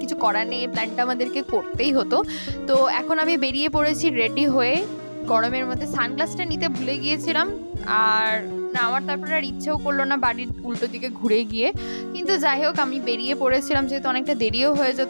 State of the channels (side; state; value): both; inverted; correlation -1.00